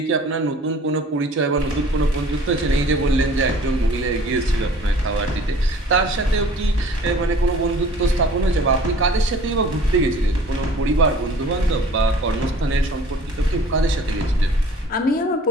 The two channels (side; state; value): both; normal; correlation 0.49